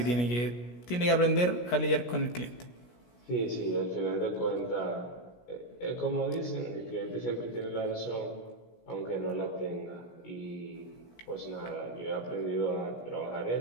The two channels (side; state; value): right; late; 17 ms